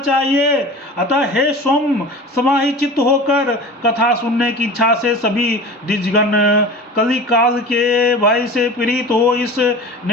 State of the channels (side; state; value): both; normal; correlation 0.36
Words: अतः हे सोम, समाहित होकर कथा सुनने की इच्छा से सभी द्विजगण कली काल के भय से पीड़ित हो इस